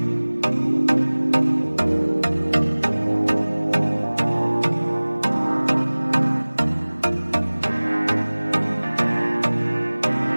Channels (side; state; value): both; inverted; correlation -1.00